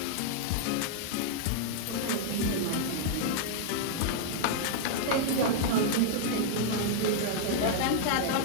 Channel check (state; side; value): different; both; correlation -0.01